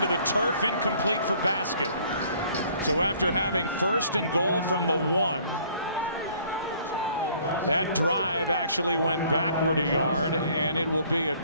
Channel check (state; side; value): inverted; both; correlation -0.58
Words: the turf, incomplete for basket. So after having 1st and goal from the 1, that drive actually went backward 1 yard, and it will be a